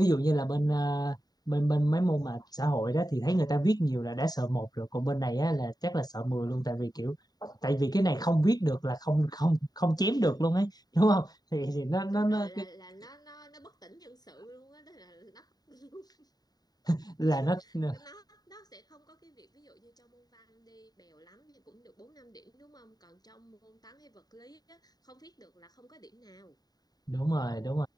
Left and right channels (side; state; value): right; late; 0.19 ms